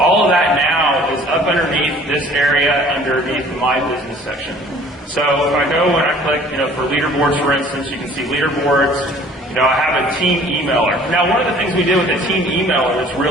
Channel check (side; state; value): both; normal; correlation 0.52